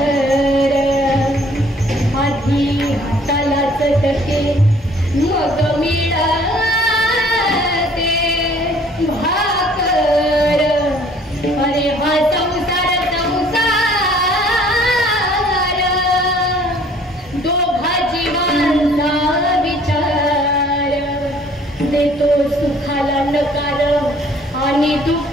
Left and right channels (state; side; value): normal; both; correlation 0.57